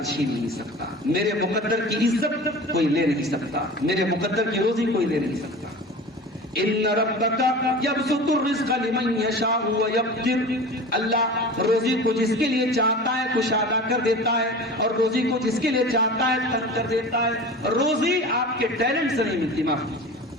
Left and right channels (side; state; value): both; normal; correlation 0.35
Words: چھین نہیں سکتا, میرے مقدر کی عزت کوئی لے نہیں سکتا, میرے مقدر کی روزی کوئی لے نہیں سکتا. ان ربک یبسط الرزق لمن یشاء ویقدر. اللہ روزی کو جس کے لیے چاہتا ہے کشادہ کر دیتا ہے اور روزی کو جس کے لیے چاہتا ہے تنگ کر دیتا ہے. روزی آپ کے ٹیلنٹ سے نہیں ملتی. معاف کیجیے,